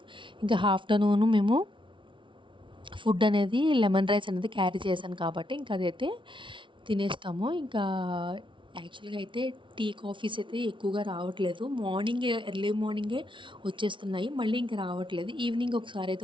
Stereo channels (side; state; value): left; late; 0.24 ms